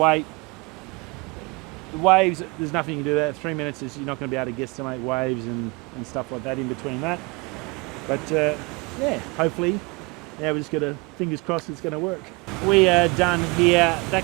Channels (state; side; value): quieter; left; 27.1 dB